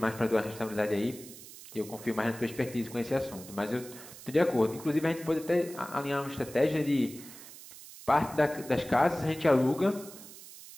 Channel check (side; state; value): right; noise; hiss, 16 dB below the sound